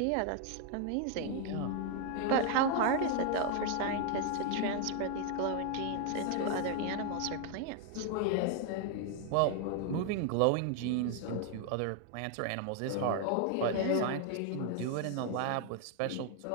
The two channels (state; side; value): different; both; correlation 0.00